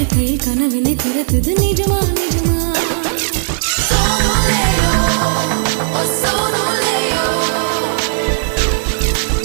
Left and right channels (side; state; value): left; silent; digital silence